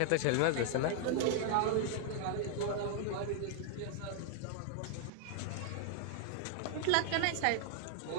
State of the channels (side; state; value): both; different; correlation 0.00